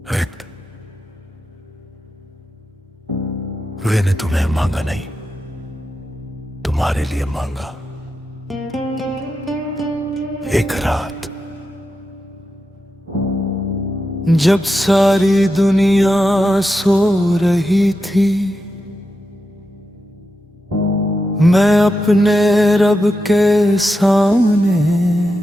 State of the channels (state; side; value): normal; both; correlation 0.88